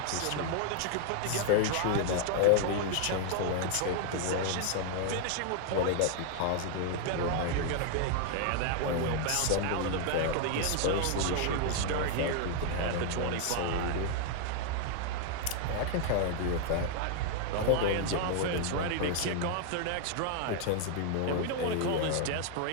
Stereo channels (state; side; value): different; both; correlation 0.00